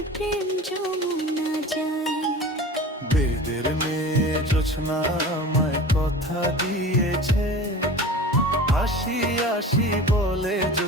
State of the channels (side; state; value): both; normal; correlation 0.37